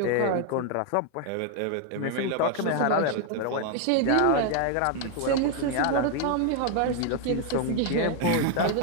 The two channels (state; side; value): different; both; correlation 0.00